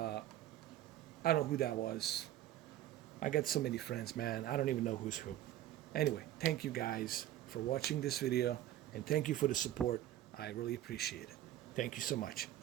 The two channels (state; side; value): quieter; left; 13.1 dB